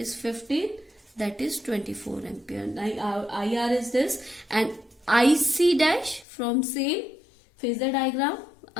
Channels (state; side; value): drops out; right; at 6.2 s